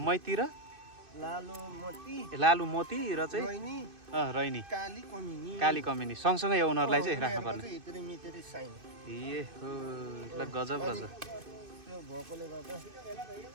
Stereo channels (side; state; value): left; late; 2.6 ms